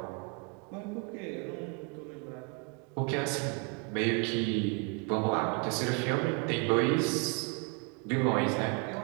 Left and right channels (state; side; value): quieter; left; 31.9 dB